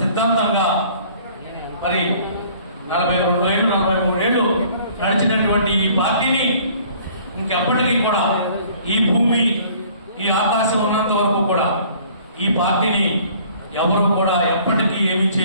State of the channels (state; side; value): inverted; both; correlation -0.54